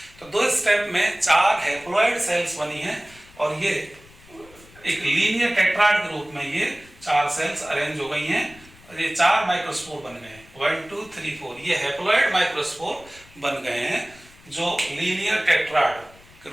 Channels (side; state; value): left; noise; rumble, 24 dB below the sound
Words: तो 2 स्टेप में 4 हैप्लॉइड सेल्स बनी हैं, और ये एक लीनियर टेट्राड के रूप में ये 4 सेल्स अरेंज हो गई हैं, और ये 4 माइक्रोस्पोर बन गए हैं, 1 2 3 4, ये हैप्लॉइड माइक्रोस्पोर बन गए हैं जो लीनियर टेट्राड के